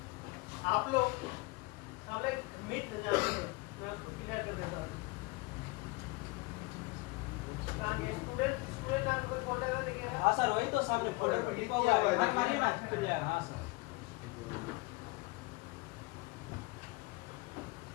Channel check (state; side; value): quieter; right; 24.7 dB